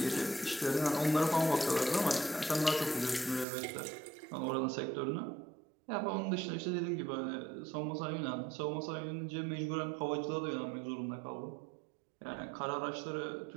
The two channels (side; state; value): left; drops out; at 3.5 s